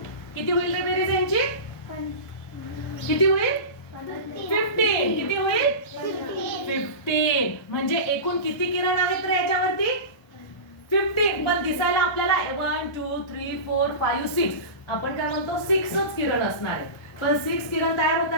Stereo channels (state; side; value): late; right; 1.3 ms